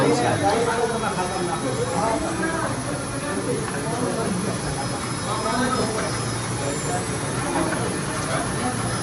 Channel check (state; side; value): identical; both; correlation 1.00